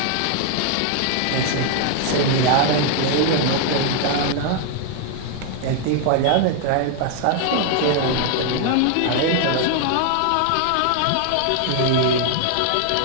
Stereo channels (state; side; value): different; both; correlation 0.00